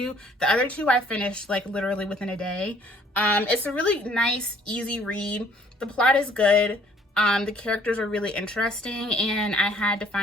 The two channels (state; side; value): normal; both; correlation 0.59